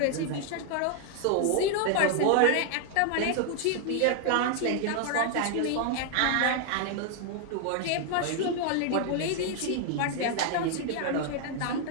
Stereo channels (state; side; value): different; both; correlation 0.00